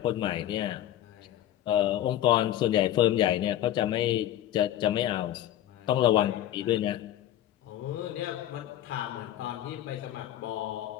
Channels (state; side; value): quieter; right; 12.5 dB